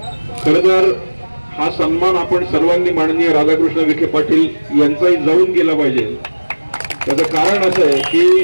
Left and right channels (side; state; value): both; inverted; correlation -1.00